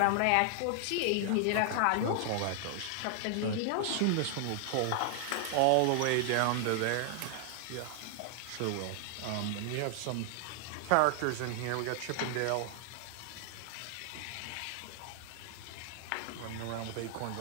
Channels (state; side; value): different; both; correlation 0.00